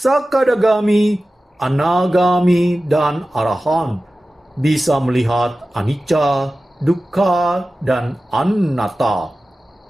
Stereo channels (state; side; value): normal; both; correlation 0.95